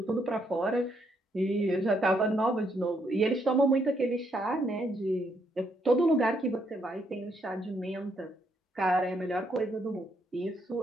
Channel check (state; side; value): normal; both; correlation 0.74